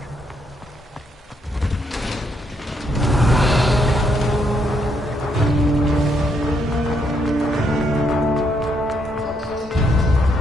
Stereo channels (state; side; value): normal; both; correlation 0.75